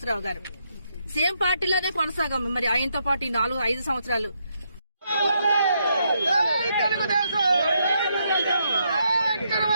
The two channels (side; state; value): both; inverted; correlation -0.78